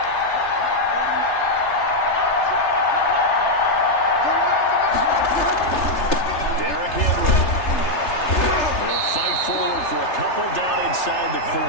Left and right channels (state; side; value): late; right; 3.3 ms